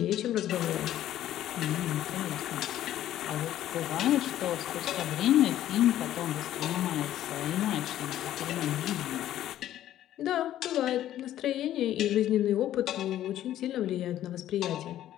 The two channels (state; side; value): quieter; right; 12.5 dB